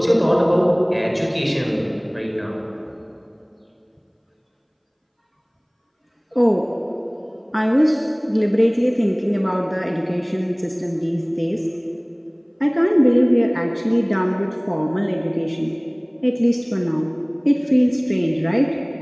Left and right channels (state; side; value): identical; both; correlation 1.00